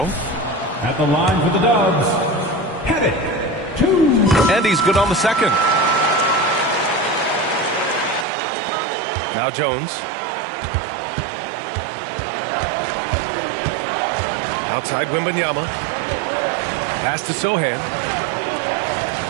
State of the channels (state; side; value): drops out; left; at 8.2 s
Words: At the line for the Dubs, Pettit, 2. And he's good on the second. Now Jones. Outside Wembanyama. Pass to Sohan.